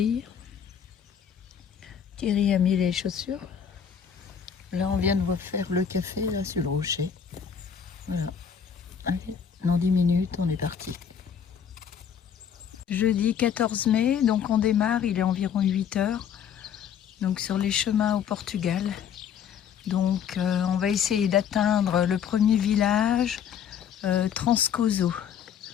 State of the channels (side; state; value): right; quieter; 8.0 dB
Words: Thierry a mis les chaussures. Là, on vient de faire le café là sur le rocher. Voilà. Allez, dans 10 minutes, on est parti. Jeudi 14 mai, donc on démarre, il est environ 8 heures. Donc sur les chemins au Portugal. Donc on va essayer d'atteindre le premier village, Transcoso.